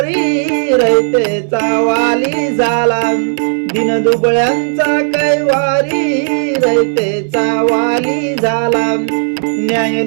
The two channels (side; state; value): left; silent; digital silence